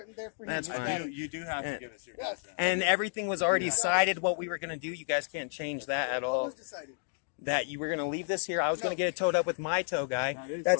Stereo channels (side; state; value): right; silent; digital silence